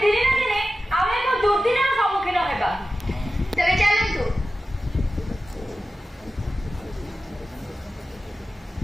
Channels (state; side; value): normal; both; correlation 0.94